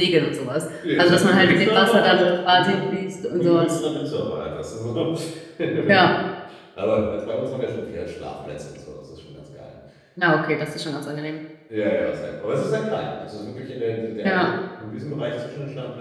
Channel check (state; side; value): identical; both; correlation 1.00